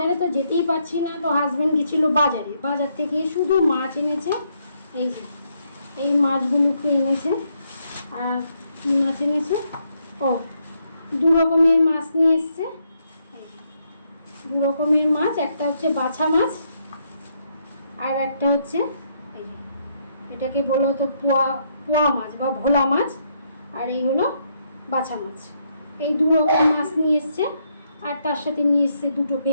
তো যেতেই পারছি না, তো হাজব্যান্ড গেছিল বাজারে, বাজার থেকে শুধু মাছ এনেছে। এই যে এই মাছগুলোকে এনেছে। আর কী মাছ এনেছে? ও, দু রকমের মাছ নিয়ে এসছে। দু রকমের মাছ, একটা হচ্ছে বাছা মাছ আর একটা হচ্ছে এই যে এটাকে বলা হতো পোয়া পোয়া মাছ বা ভোলা মাছ, আর এই হলো বাছা মাছ। এই দু রকম মাছ নিয়ে এসছে, আর তার সাথে নিয়ে এসছে দুটো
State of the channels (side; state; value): both; inverted; correlation -0.75